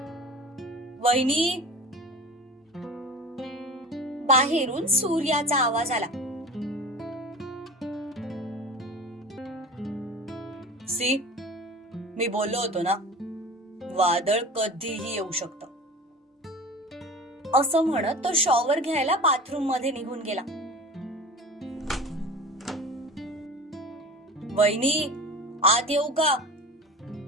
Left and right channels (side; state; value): both; normal; correlation 0.36